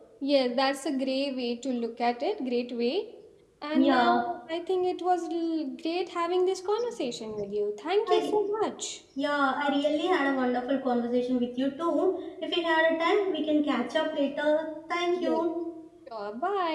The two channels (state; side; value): identical; both; correlation 1.00